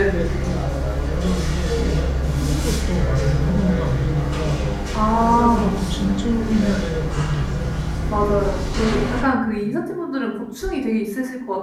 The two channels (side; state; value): both; identical; correlation 1.00